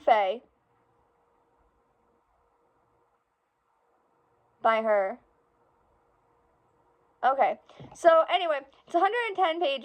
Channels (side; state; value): both; identical; correlation 1.00